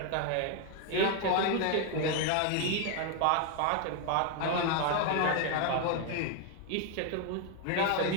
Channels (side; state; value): both; different; correlation 0.01